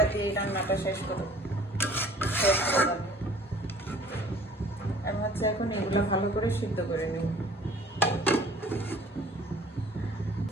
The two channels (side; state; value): both; normal; correlation 0.51